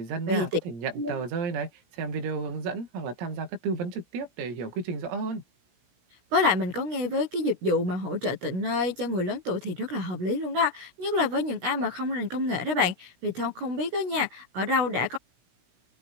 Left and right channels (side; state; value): left; late; 17 ms